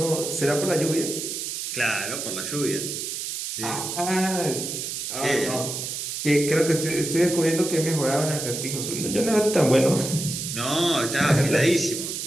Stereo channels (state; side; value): noise; right; hiss, 5 dB below the sound